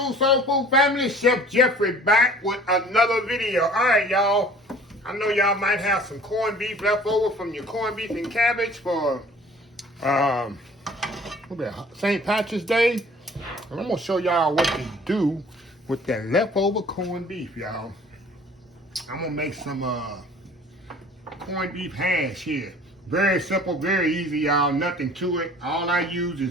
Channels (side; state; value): both; normal; correlation 0.50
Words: soul food family. Chef Jeffrey back with another video. All right, y'all. I know y'all might have some corned beef left over from your corned beef and cabbage for St. Patrick's Day. And I'm gonna show y'all what to do with that leftover corned beef, y'all. I'm gonna make some corned beef hash here. Very simple, very easy, y'all. Nothing to it. All I use